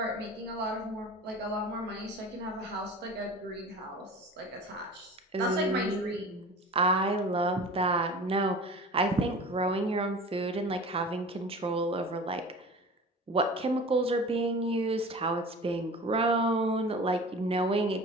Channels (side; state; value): both; normal; correlation 0.38